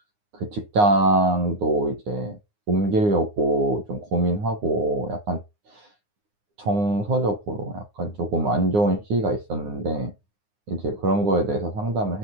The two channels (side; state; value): left; late; 9.7 ms